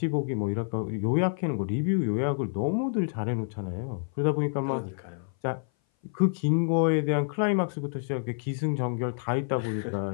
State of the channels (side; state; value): right; silent; 57 dB below the other